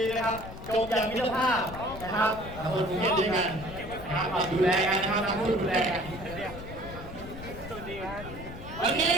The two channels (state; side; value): noise; left; rumble, 12 dB below the sound